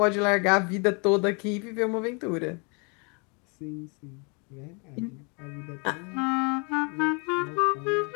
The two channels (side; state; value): right; quieter; 33.5 dB